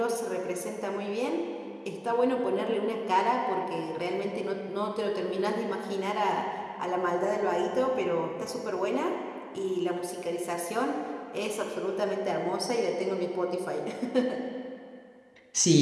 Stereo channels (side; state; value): both; identical; correlation 1.00